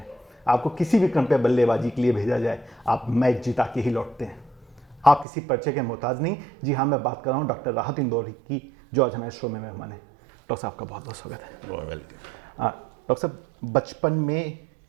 आपको किसी भी क्रम पे बल्लेबाजी के लिए भेजा जाए, आप मैच जिता के ही लौटते हैं। आप किसी परिचय के मोहताज नहीं। जी हाँ, मैं बात कर रहा हूँ डॉक्टर राहत इंदौरी की, जो आज हमारे शो में मेहमान है। डॉक्टर साहब का बहुत बहुत स्वागत है। डॉक्टर साहब, बचपन में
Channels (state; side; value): drops out; left; at 5.2 s